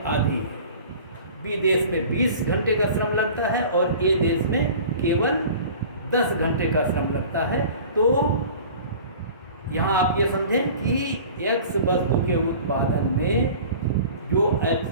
आधी है। बी देश में 20 घंटे का श्रम लगता है और ए देश में केवल 10 घंटे का श्रम लगता है। तो यहाँ आप ये समझें कि एक्स वस्तु के उत्पादन में जो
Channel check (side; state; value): both; inverted; correlation -0.43